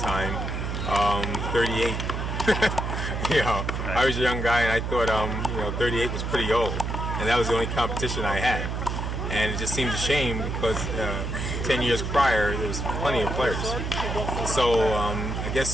38. I was a young guy, and I thought, 38 was pretty old, and that was the only competition I had. And it just seemed a shame because 10 years prior, there was plenty of players. So I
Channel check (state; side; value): noise; right; hum, 3 dB below the sound